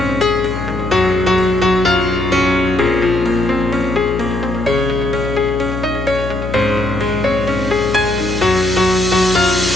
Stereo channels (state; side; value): noise; left; hum, 6 dB below the sound